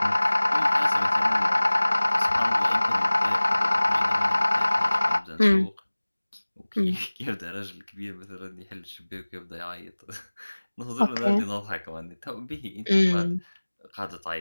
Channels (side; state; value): both; inverted; correlation -1.00